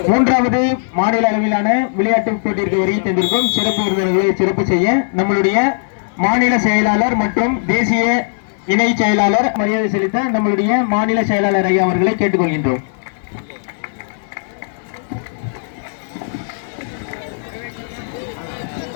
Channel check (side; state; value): right; silent; 68 dB below the other